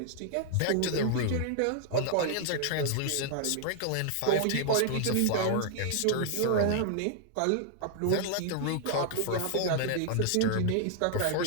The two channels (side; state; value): both; different; correlation 0.00